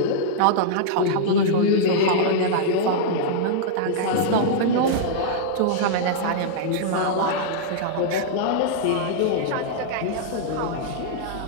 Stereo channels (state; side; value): different; both; correlation -0.02